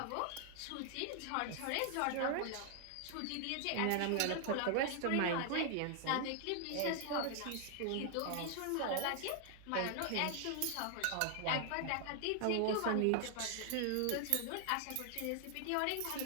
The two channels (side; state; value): both; different; correlation 0.00